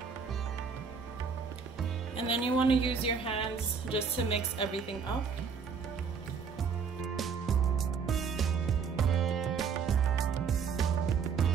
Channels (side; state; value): left; quieter; 6.0 dB